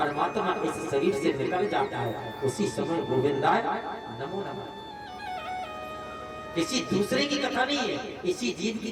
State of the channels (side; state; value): both; identical; correlation 1.00